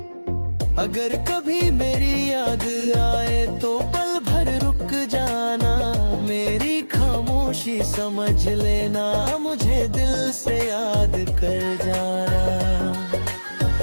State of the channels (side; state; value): both; inverted; correlation -1.00